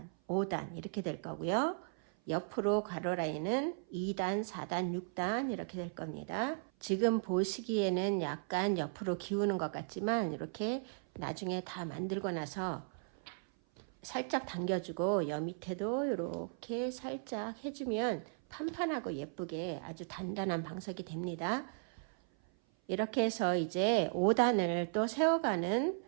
5단 이렇게 될 거고요. 옆으로 가로 라인은 2단, 4단, 6단 이렇게 될 겁니다. 지금 보시기에는 약간 옆으로 기우는 것 같지만, 이렇게 나중에 다 만들고 나서 살짝 당겨주고 여 밑에도 이렇게 살짝 해주면 판판하고 예쁘게 아주 단단한 방석이 됩니다. 이렇게 해서 이제 5단을 또 세워가는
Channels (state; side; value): silent; left; 54 dB below the other